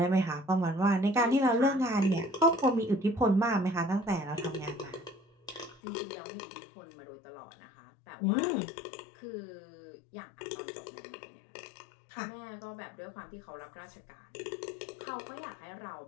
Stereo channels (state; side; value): drops out; right; at 5.8 s